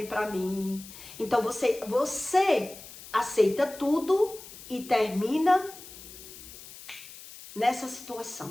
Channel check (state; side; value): noise; left; hiss, 16 dB below the sound